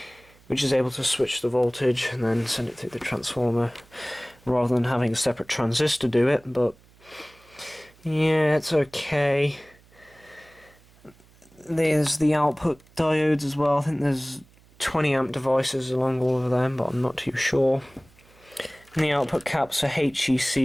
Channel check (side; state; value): right; noise; hum, 28 dB below the sound